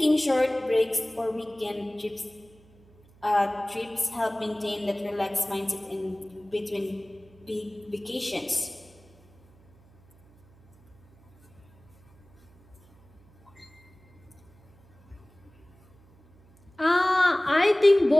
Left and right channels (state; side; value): noise; right; hum, 28 dB below the sound